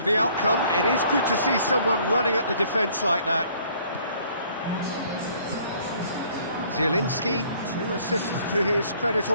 the outcome, it is good to see someone running at the defence like that. Zielinski, 2 assists to his credit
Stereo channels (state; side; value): inverted; both; correlation -0.59